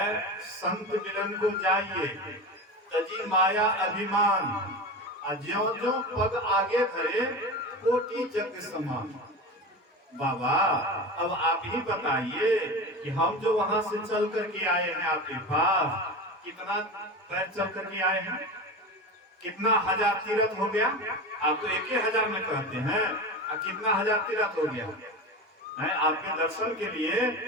संत मिलन को जाइए तजी माया अभिमान, ज्यों ज्यों पग आगे धरे कोटि जग समान। बाबा अब आप ही बताइए कि हम जो वहां से चल करके आए हैं आपके पास, कितना पैर चल करके आए हैं, कितना 1000 तीर्थ हो गया? आप तो 1000 में कहते हैं, कितना 1000 तीर्थ हो गया? है, आपके दर्शन के लिए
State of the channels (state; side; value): normal; both; correlation 0.26